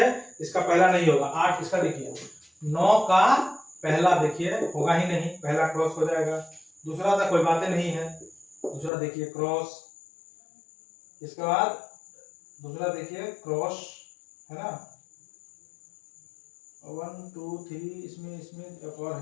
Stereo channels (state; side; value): drops out; right; at 8.9 s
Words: इसका पहला नहीं होगा, 8 इसका देखिए। 9 का पहला देखिए होगा ही नहीं, पहला क्रॉस हो जाएगा। दूसरा तो कोई बातें नहीं है, दूसरा देखिए क्रॉस। इसके बाद दूसरा देखिए क्रॉस है ना, 1 2 3, इसमें इसमें एक और